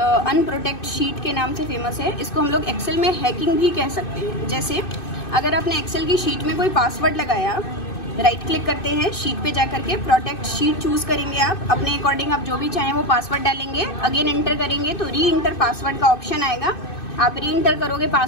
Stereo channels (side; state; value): right; late; 2.6 ms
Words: शीट के नाम से फेमस है। इसको हम लोग एक्सेल में हैकिंग भी कह सकते हैं। जैसे अगर आपने एक्सेल की शीट में कोई पासवर्ड लगाया, राइट क्लिक करते हैं, शीट पे जाकर के प्रोटेक्ट शीट चूज करेंगे। आप अपने अकॉर्डिंग आप जो भी चाहें वो पासवर्ड डालेंगे, अगेन एंटर करेंगे तो री इंटर पासवर्ड का ऑप्शन आएगा। आप री इंटर करोगे